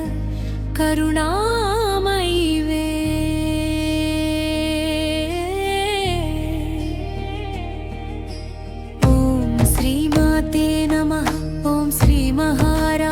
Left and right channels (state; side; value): identical; both; correlation 1.00